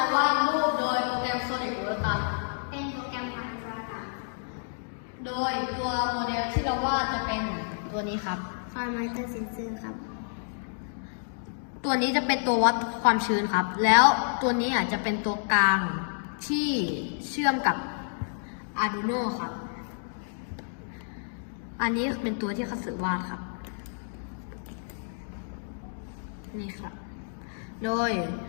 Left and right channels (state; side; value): silent; right; digital silence